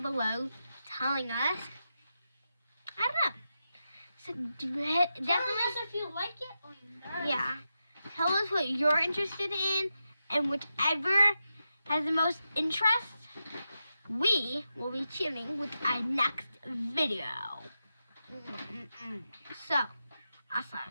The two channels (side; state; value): both; inverted; correlation -0.89